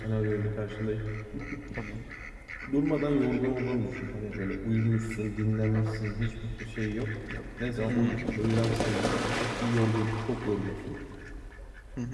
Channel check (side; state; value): both; identical; correlation 1.00